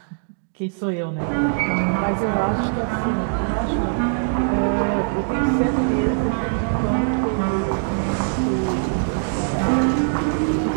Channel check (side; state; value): left; silent; digital silence